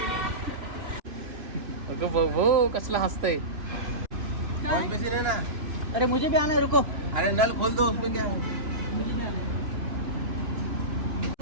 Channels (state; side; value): late; left; 2.9 ms